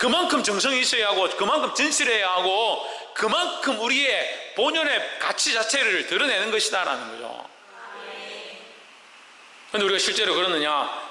정성이 있어야 하고 그만큼 진실해야 하고 그만큼 우리의 본연의 가치 자체를 드러내는 것이다라는 거죠. 그런데 우리가 실제로 그러느냐?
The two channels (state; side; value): identical; both; correlation 1.00